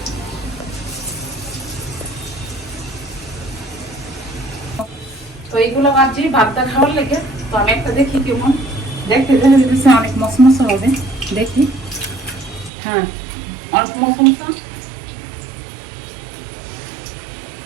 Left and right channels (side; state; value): left; drops out; at 12.7 s